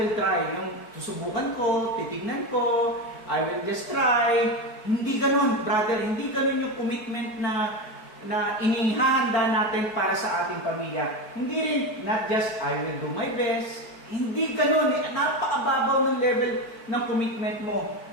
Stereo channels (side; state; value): right; late; 4.6 ms